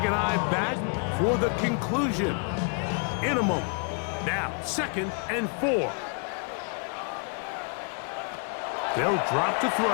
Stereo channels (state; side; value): quieter; right; 39.2 dB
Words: and I back for the conclusion in a moment. Now, 2nd and 4. They'll drop to throw.